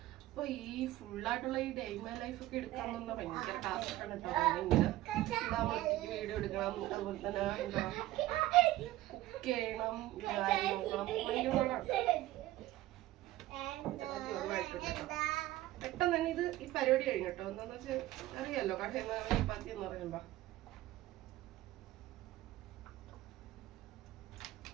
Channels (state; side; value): quieter; left; 16.0 dB